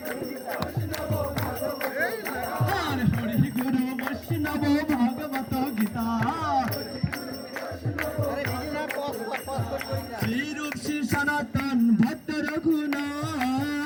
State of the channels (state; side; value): identical; both; correlation 1.00